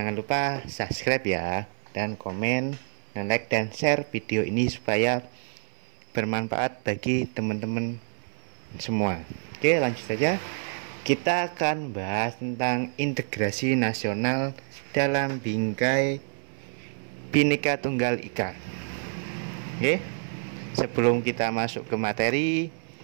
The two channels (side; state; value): left; silent; 60 dB below the other